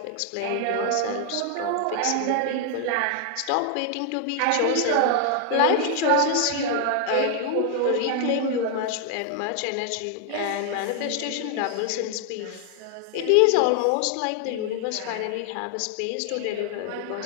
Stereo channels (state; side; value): different; both; correlation 0.00